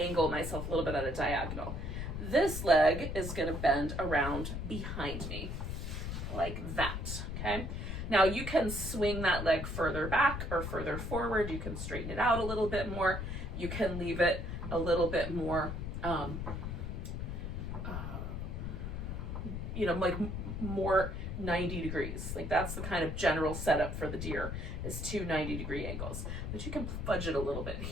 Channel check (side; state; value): left; noise; rumble, 4 dB below the sound